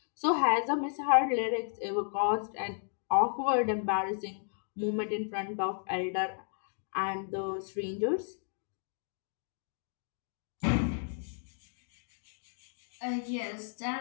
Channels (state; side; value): silent; right; digital silence